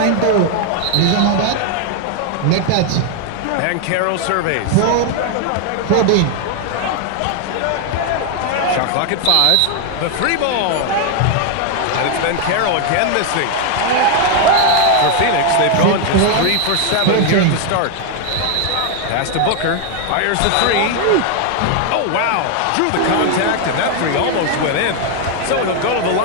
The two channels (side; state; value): both; different; correlation 0.01